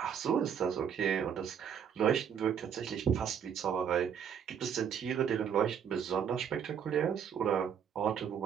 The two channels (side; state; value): left; quieter; 8.0 dB